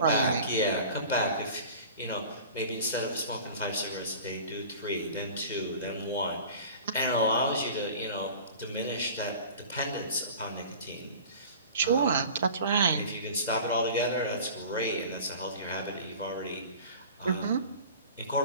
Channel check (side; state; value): both; inverted; correlation -0.40